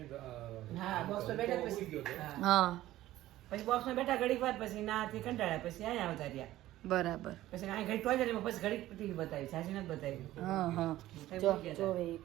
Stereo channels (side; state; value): left; quieter; 15.0 dB